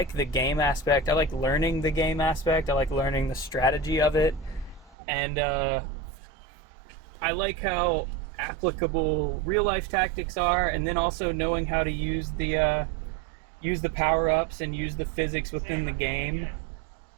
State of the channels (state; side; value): drops out; left; at 5.0 s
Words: game aspect. I like learning the game aspect. I like learning the strategy of it. And I like how applicable real life tactics are, and then also knowing how to use the power-ups and use the physics within the game.